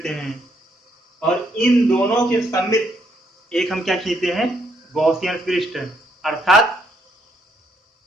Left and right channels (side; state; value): both; normal; correlation 0.72